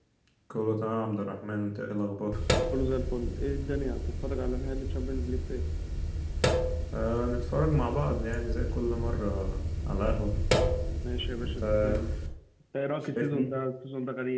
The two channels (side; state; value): both; identical; correlation 1.00